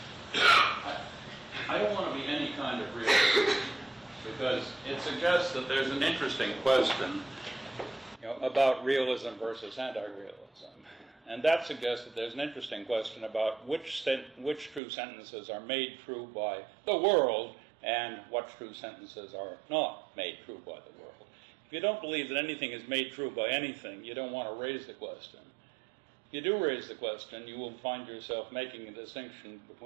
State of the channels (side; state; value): left; drops out; at 14.8 s